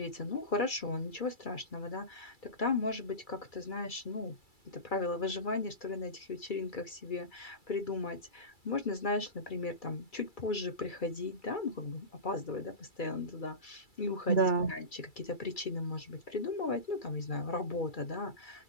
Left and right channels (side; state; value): right; late; 2.3 ms